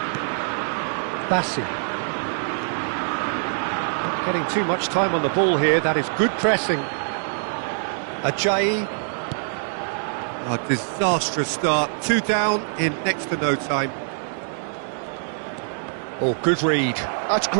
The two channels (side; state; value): left; silent; digital silence